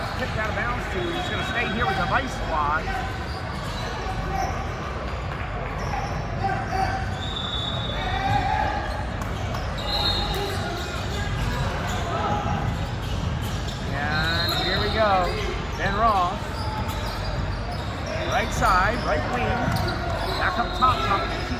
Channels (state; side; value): identical; both; correlation 1.00